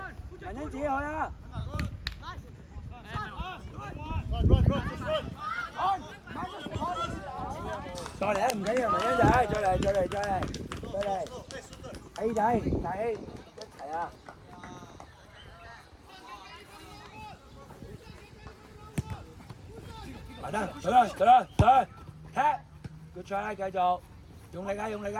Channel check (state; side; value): identical; both; correlation 1.00